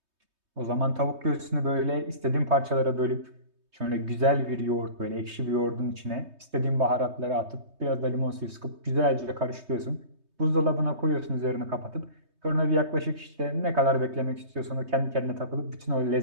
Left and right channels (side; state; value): left; late; 3.2 ms